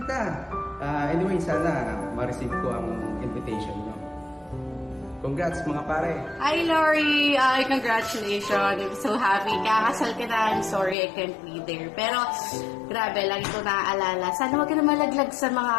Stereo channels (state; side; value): drops out; right; at 11.0 s